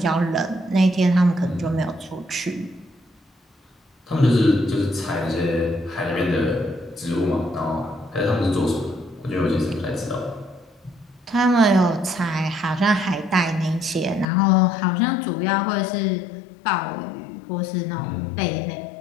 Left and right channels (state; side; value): drops out; right; at 14.2 s